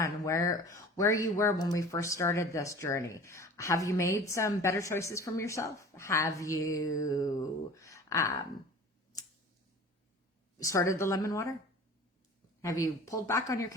where you were when we first started this journey. Have you made some better choices from yourself? Have you started the lemon water? Have you pulled back on your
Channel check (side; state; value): both; normal; correlation 0.42